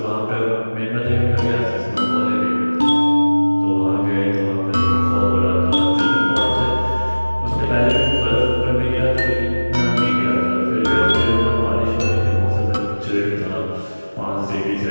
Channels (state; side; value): inverted; both; correlation -1.00